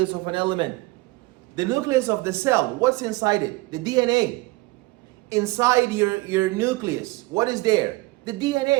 of an element. The nucleus of the cell, what's inside it? The DNA. Inside your nucleus, what is there? The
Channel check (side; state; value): left; quieter; 21.7 dB